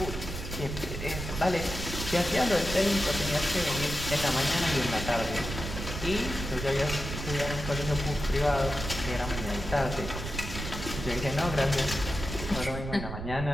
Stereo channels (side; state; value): right; noise; rumble, 6 dB below the sound